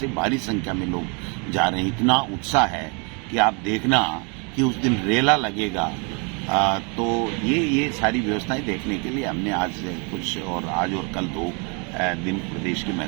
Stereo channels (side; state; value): left; quieter; 33.9 dB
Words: भारी संख्या में लोग जा रहे हैं। इतना उत्साह है कि आप देखना कि उस दिन रेला लगेगा। तो ये सारी व्यवस्थाएं देखने के लिए हमने आज और कल 2 दिन प्रदेश के